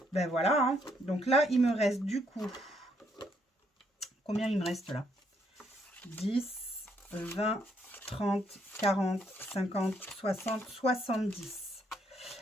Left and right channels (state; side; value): normal; both; correlation 0.72